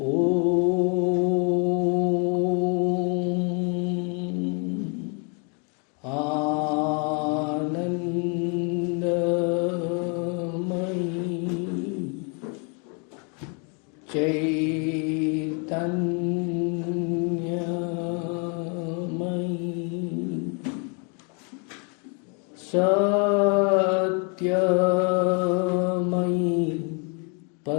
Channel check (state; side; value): quieter; right; 36.6 dB